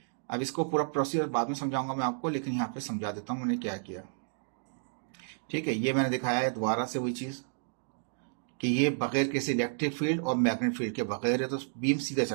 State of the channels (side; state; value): left; silent; digital silence